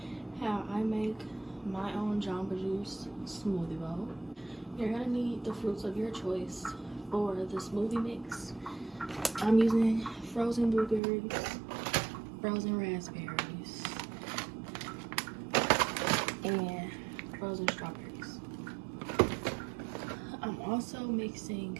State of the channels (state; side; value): drops out; left; at 11.0 s